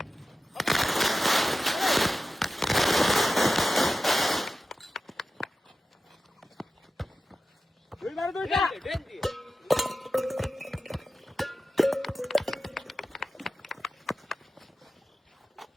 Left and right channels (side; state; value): both; normal; correlation 0.93